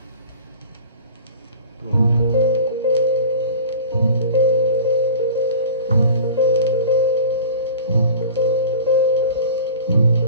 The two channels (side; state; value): both; inverted; correlation -0.39